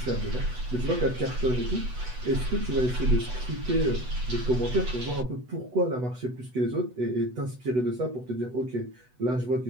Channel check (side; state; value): left; late; 8.0 ms